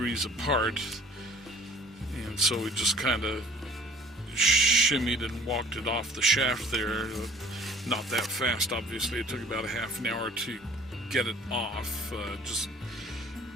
apart, and so we just kind of shimmied and walked it off the shaft there. Not that fast, obviously. It took about a half an hour to get it off. Just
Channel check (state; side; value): normal; both; correlation 0.51